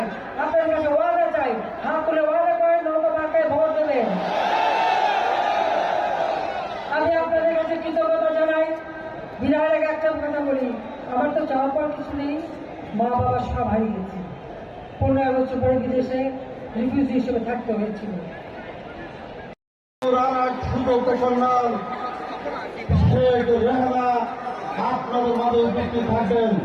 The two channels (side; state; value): both; identical; correlation 1.00